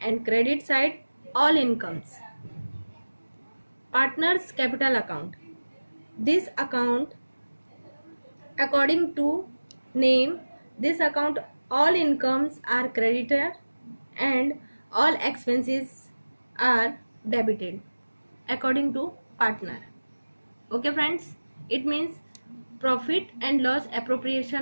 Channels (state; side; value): inverted; both; correlation -1.00